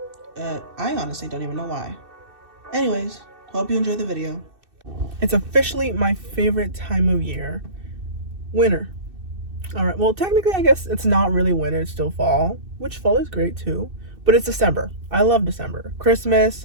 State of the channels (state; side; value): late; left; 2.6 ms